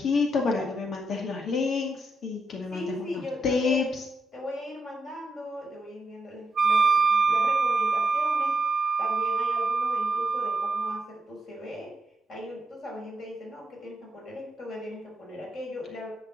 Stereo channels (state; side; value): normal; both; correlation 0.83